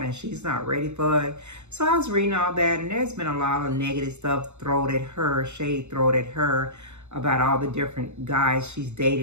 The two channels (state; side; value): late; left; 0.82 ms